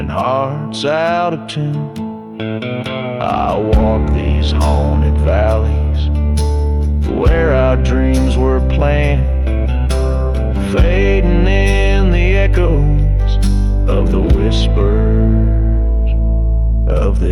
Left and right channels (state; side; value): identical; both; correlation 1.00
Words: hearts out of tune. I walk these haunted valleys where our dreams were planned, fading in the echoes of the whispers of